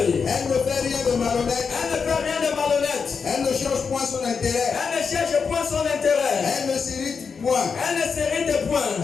Elle ne fait rien de malhonnête. Elle ne fait rien de malhonnête. Elle ne cherche point son intérêt. Elle ne cherche point son intérêt. Elle ne s'irrite point. Elle ne s'irrite point.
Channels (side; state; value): right; quieter; 5.7 dB